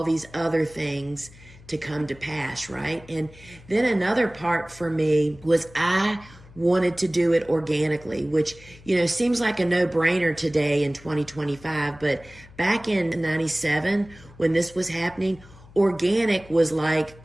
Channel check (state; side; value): noise; left; hum, 22 dB below the sound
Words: these other things to come to pass, right? And then another part for me was I wanted to do it organically, which, seems like a no-brainer today in 2025. But back in 97, when this was happening, organic was like